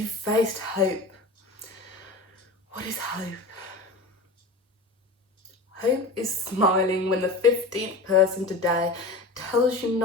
faced hope. What is hope? Hope is smiling when the 15th person today tells you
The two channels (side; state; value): right; quieter; 3.2 dB